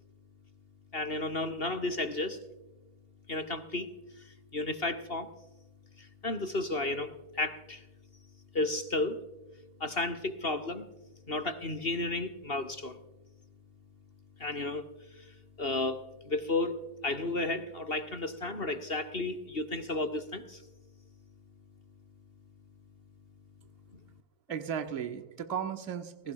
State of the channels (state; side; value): late; right; 2.8 ms